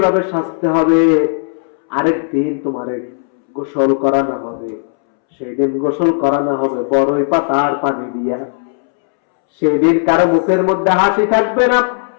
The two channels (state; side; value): silent; right; 70 dB below the other